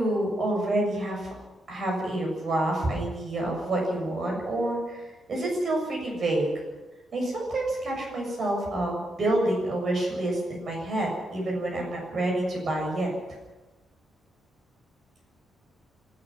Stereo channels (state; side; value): normal; both; correlation 0.81